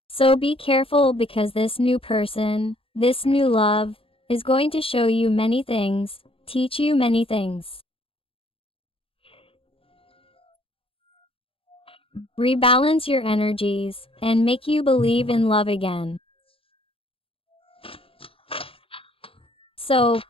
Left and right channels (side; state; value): right; late; 0.27 ms